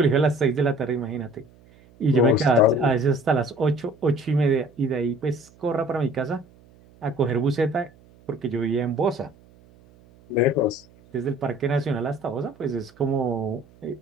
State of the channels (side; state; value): right; noise; hum, 27 dB below the sound